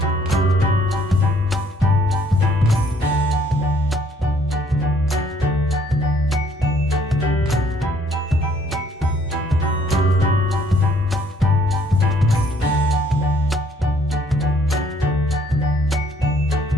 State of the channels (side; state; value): both; normal; correlation 0.63